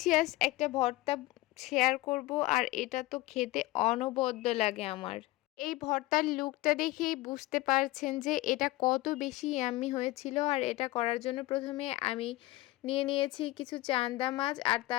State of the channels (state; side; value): quieter; right; 18.8 dB